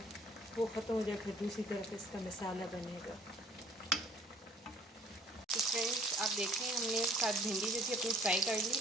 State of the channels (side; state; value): both; normal; correlation 0.54